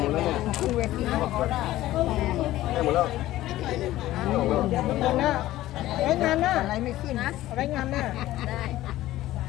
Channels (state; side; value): quieter; right; 15.3 dB